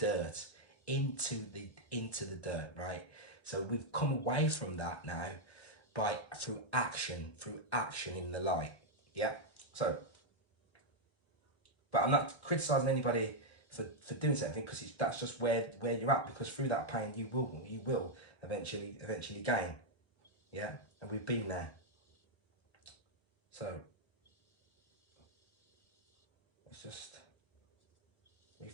into the dirt, right? So we've come away from that now through action in the light, yeah. So, but I'm not criticizing anybody for doing something, because that's just where you're at, because through that pain you will eventually gain, yeah. And we've been there. So let's just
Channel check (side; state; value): right; late; 1.3 ms